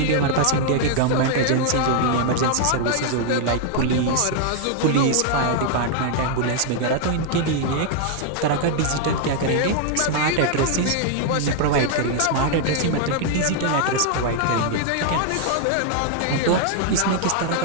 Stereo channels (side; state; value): both; different; correlation 0.00